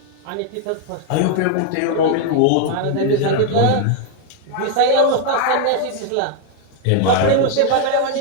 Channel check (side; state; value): both; different; correlation 0.00